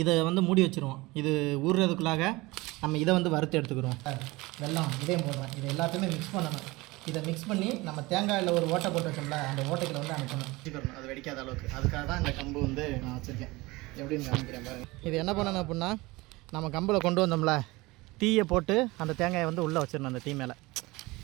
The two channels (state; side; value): quieter; left; 21.9 dB